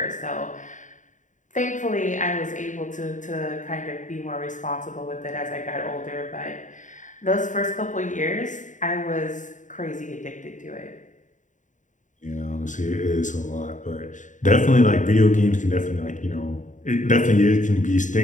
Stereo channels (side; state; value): right; late; 0.36 ms